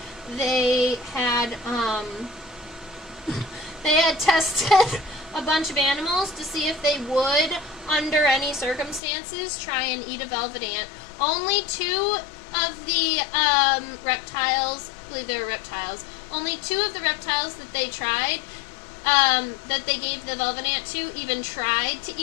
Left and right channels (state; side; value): drops out; right; at 9.0 s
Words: they had tested a bunch of animals to see if they would, under any circumstances, try and eat a velvet ant. Only two of the reptiles, I believe they were reptiles, only two of the reptiles that they tried, that they gave the velvet ant to, even tried to